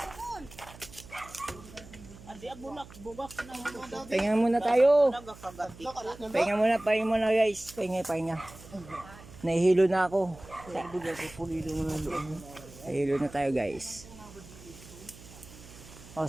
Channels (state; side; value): noise; right; hum, 19 dB below the sound